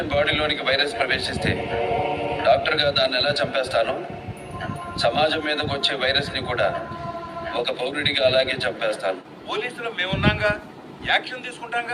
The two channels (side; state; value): both; identical; correlation 1.00